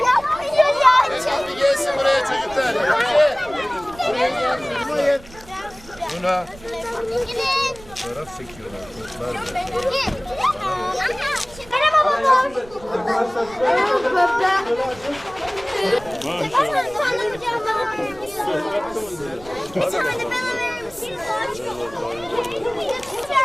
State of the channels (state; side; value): noise; right; rumble, 20 dB below the sound